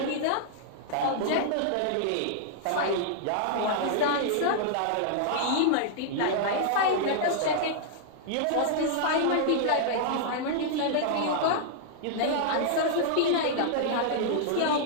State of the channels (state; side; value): different; both; correlation -0.01